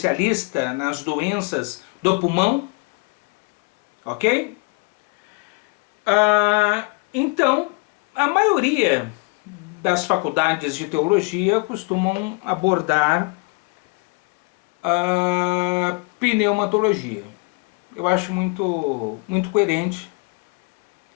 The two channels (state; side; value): quieter; right; 30.6 dB